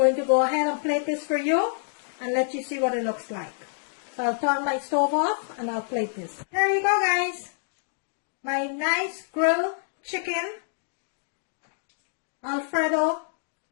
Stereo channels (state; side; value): silent; right; digital silence